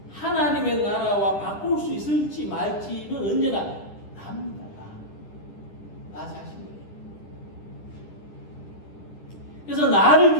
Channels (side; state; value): right; late; 10 ms